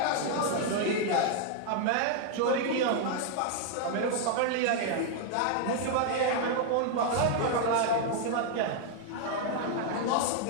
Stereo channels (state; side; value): different; both; correlation 0.00